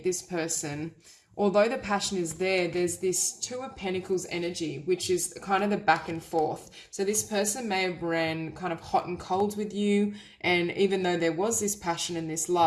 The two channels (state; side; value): identical; both; correlation 1.00